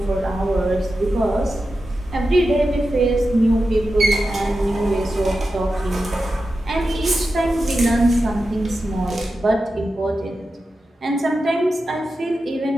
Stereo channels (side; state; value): both; normal; correlation 0.91